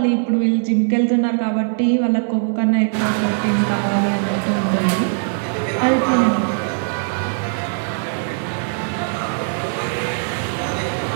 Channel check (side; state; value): left; silent; 58 dB below the other